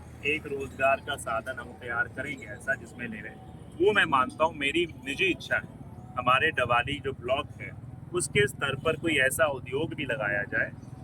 एक रोजगार का साधन हम तैयार करेंगे ऐसा जिसमें ले रहे, वो मैं मानता हूँ, मेरी निजी इच्छा है हमारे डवाली जो ब्लॉक है उसके स्तर पर कोई ऐसा उद्योग भी लगाया जाए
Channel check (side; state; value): both; identical; correlation 1.00